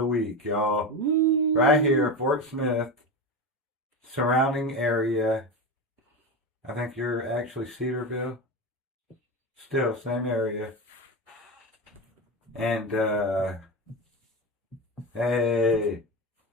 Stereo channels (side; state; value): both; normal; correlation 0.20